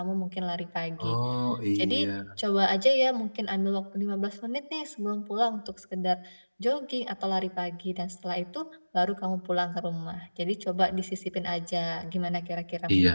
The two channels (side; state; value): both; inverted; correlation -1.00